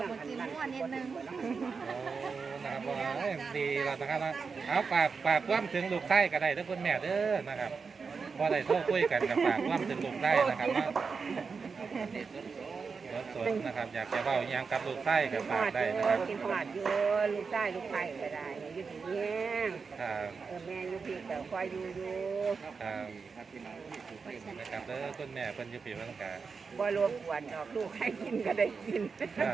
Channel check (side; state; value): left; quieter; 5.2 dB